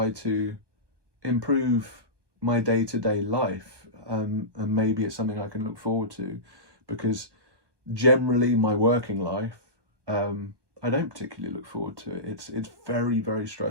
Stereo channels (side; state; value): left; late; 1.2 ms